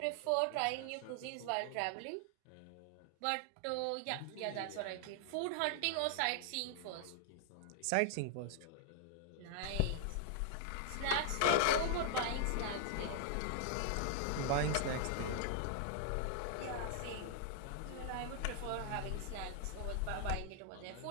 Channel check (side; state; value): both; different; correlation -0.01